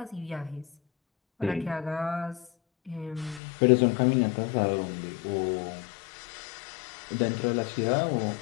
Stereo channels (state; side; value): drops out; right; at 3.4 s